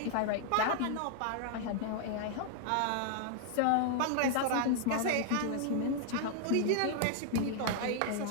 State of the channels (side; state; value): both; different; correlation 0.00